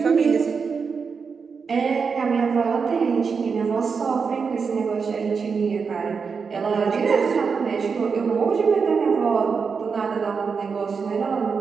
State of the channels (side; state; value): left; quieter; 5.5 dB